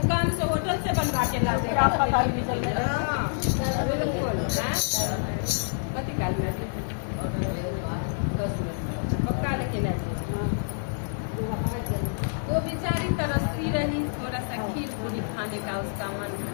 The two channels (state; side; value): silent; right; digital silence